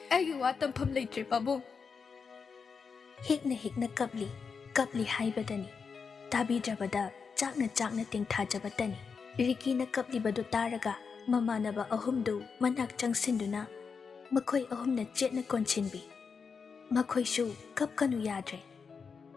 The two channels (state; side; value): quieter; right; 5.6 dB